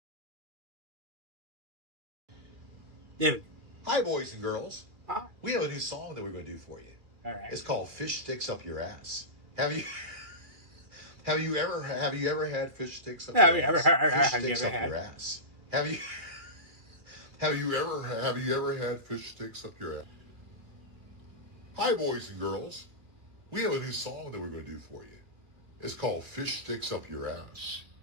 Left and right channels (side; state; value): left; late; 2.4 ms